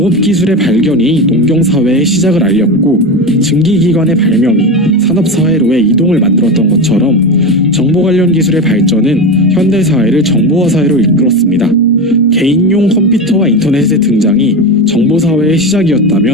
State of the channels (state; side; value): normal; both; correlation 0.20